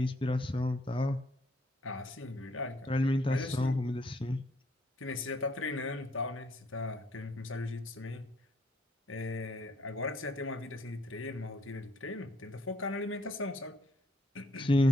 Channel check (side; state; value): both; normal; correlation 0.68